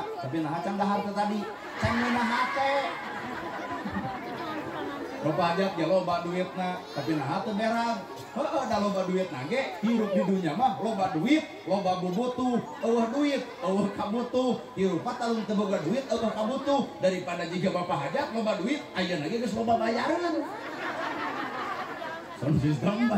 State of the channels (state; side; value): identical; both; correlation 1.00